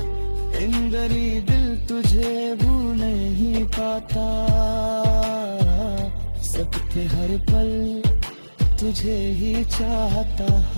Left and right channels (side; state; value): both; inverted; correlation -1.00